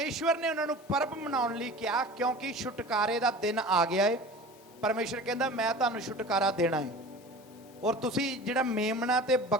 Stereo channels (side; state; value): both; normal; correlation 0.38